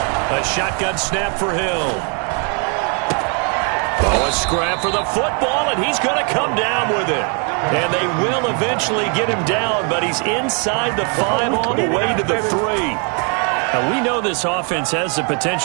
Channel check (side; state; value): left; quieter; 37.4 dB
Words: A shotgun snap for Hill. Oh, a scrap for the football, and he's going to come down with it. And they will eventually get him down, but he's inside the 5 on the way to the 3. Now, we know this offense has the